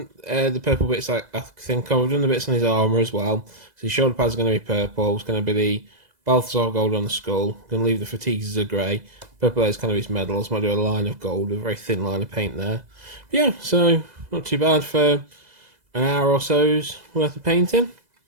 the purple bits I think I've done the bits on his armour as well. So his shoulder pads are going to be purple, it's going to be the Balthasar Gold on the skull, I'm going to leave the fatigues as a grey, purple there is kind of his medals, might do a line of gold, a very thin line of paint there. But yeah, so not too bad for an hour or so's worth of painting.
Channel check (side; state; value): left; late; 2.0 ms